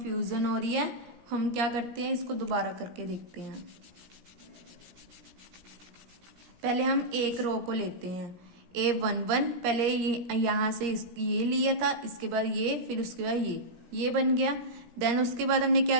हो रही है, हम क्या करते हैं, इसको दोबारा करके देखते हैं। पहले हम एक रो को लेते हैं, a11, पहले ये यहां से ये लिया था, इसके बाद ये, फिर उसके बाद ये, ये बन गया। देन उसके बाद हमने क्या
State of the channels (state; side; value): late; left; 17 ms